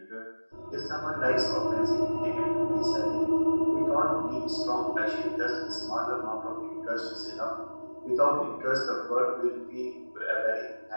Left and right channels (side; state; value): both; inverted; correlation -1.00